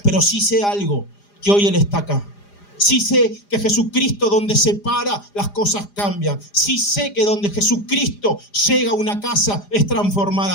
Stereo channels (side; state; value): right; late; 4.9 ms